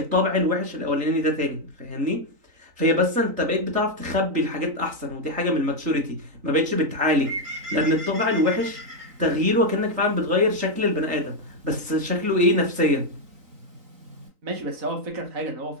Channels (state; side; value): late; left; 3.9 ms